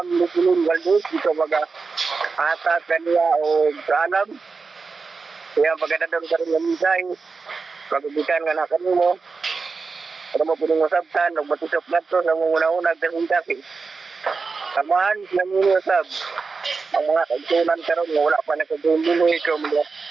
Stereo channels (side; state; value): left; quieter; 4.6 dB